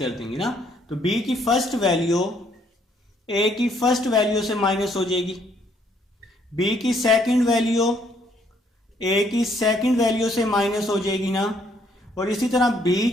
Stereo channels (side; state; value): both; normal; correlation 0.67